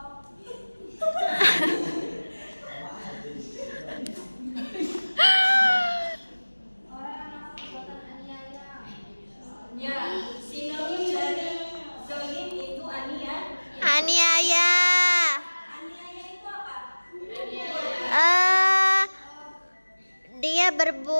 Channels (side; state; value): both; inverted; correlation -1.00